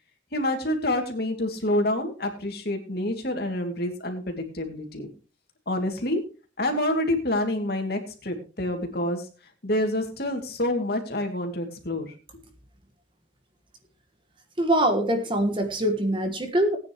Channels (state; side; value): normal; both; correlation 0.24